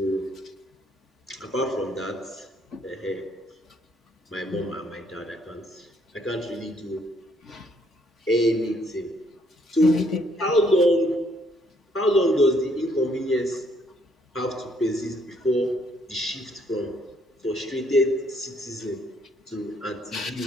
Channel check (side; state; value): both; normal; correlation 0.68